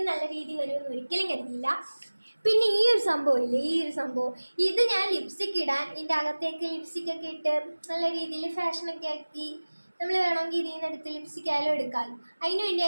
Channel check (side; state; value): both; inverted; correlation -1.00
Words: നല്ല രീതി വരുമെന്ന് ഒരിക്കലും കരുതിയില്ല. പിന്നെ ഈ ഒരു സംഭവം ഇത് ഞാൻ ലിപ്സ്റ്റിക് ഇടാൻ ഇതിൻ്റെ അകത്തേക്ക് ലിപ്സ്റ്റിക്കൊക്കെ ഇട്ട് നല്ല രീതിയിൽ ഫാഷനൊക്കെ ആക്കി നമ്മൾ വേണമെങ്കിൽ ഇതിൽ നിന്ന് എടുത്ത് ലിപ്സ്റ്റിക് ആയാലും എടുക്കാമല്ലോ. അതിന്